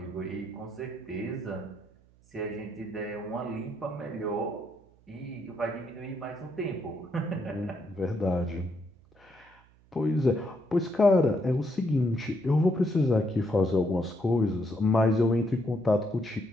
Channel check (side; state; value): right; noise; hum, 29 dB below the sound